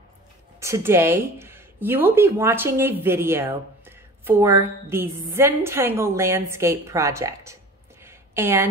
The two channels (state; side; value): normal; both; correlation 0.40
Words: Today, you will be watching a video for the Zentangle landscape project.